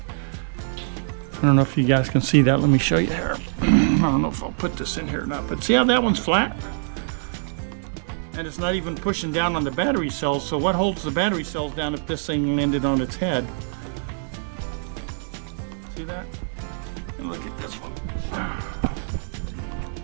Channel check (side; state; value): left; silent; digital silence